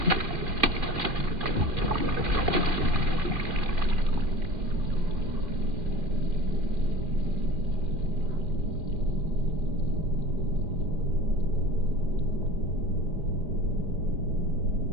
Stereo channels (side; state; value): left; late; 2.4 ms